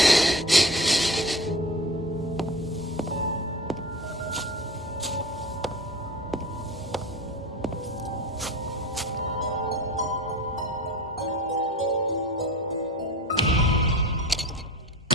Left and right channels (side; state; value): both; normal; correlation 0.36